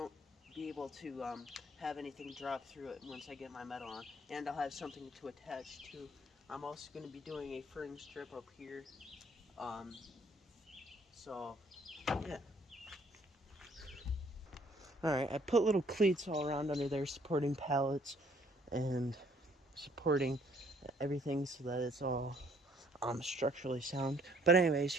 be able to have anything drop through it once I get my metal on. And I'll have something to attach to. I'm also going to be doing a fringe strip up here. So, yeah. Alright, I put little cleats all around under there supporting pallets and supporting everything so that it's all structurally sound. But anyways,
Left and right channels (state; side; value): normal; both; correlation 0.63